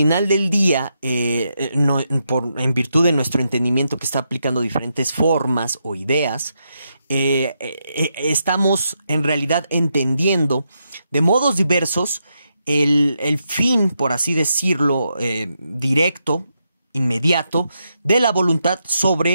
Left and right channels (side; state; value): both; inverted; correlation -0.82